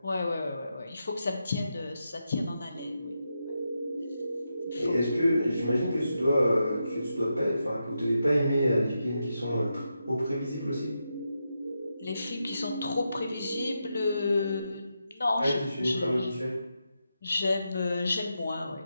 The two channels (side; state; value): both; inverted; correlation -0.86